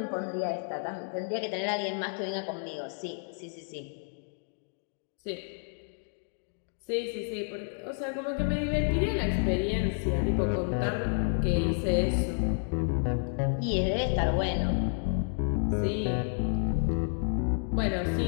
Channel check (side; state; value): right; silent; 58 dB below the other